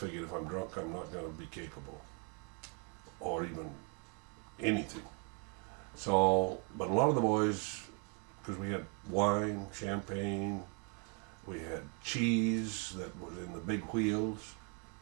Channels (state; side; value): quieter; left; 36.9 dB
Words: if I'm drunk, I'm not going to be capable, or even anything. So, but a lot of the boys, because we had wine, champagne, we had cheese that was in the big wheels.